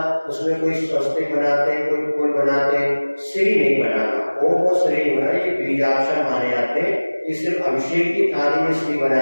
उसमें कोई स्वस्तिक बनाते हैं, कोई फूल बनाते हैं, श्री नहीं बनाना, वो श्री नहीं बनाना, ये बीजाक्षर माने जाते हैं। ये सिर्फ अभिषेक की थाली में श्री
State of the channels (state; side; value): inverted; both; correlation -1.00